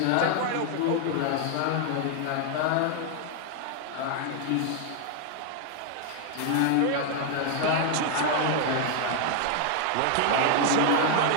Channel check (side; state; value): both; different; correlation 0.00